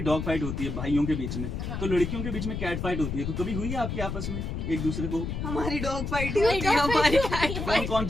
डॉग फाइट होती है भाइयों के बीच में, हाँ। तो लड़कियों के बीच में कैट फाइट होती है, तो कभी हुई है आपकी आपस में एक दूसरे को? हमारी डॉग फाइट ही हमारी होती है, dog हमारी fight cat होती है। कौन कौन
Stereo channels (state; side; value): noise; left; rumble, 4 dB below the sound